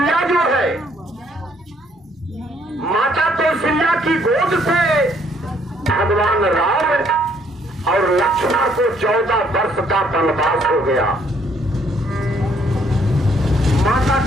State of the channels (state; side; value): normal; both; correlation 0.67